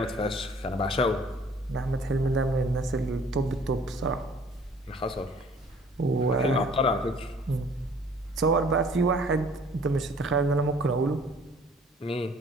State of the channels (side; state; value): both; normal; correlation 0.54